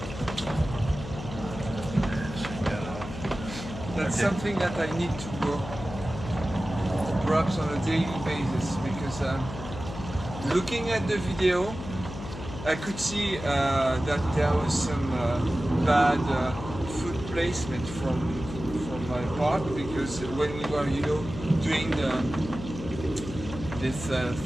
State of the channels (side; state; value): left; noise; hum, 10 dB below the sound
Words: That's Okay. something that I need to work perhaps on a daily basis, because looking at the video, I could see that there was some bad foot placement from my part, because when we were, doing this